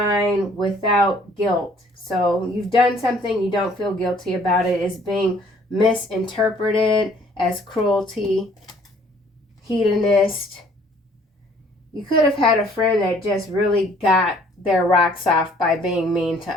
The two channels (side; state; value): both; normal; correlation 0.59